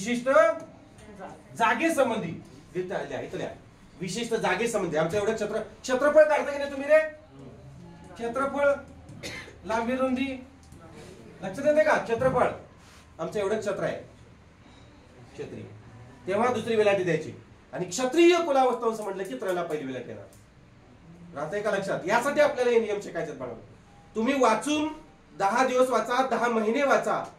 जागे संबंधी. इथल्या विशिष्ट जागे संबंधी. आमचं एवढं क्षेत्रफळ काढता की नाही तुम्ही रे? क्षेत्रफळ, लांबी रुंदी लक्षात येते का? क्षेत्रफळ आमचं एवढं क्षेत्र आहे क्षत्रिय. तेव्हा दुसरी वेलाटी द्यायची. आणि क्षत्रिय कुलावंश म्हटलं की त्रला पहिली वेलाट येणार. राहतंय का लक्षात? यासाठी आपल्याला हे नियम शिकायचे बनवले. तुम्ही वाचून 10 दिवस वाचा, 10 महिने वाचा,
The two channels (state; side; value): identical; both; correlation 1.00